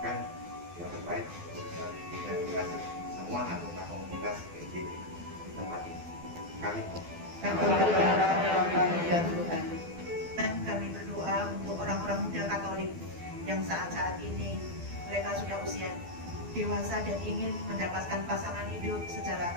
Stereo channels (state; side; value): late; left; 12 ms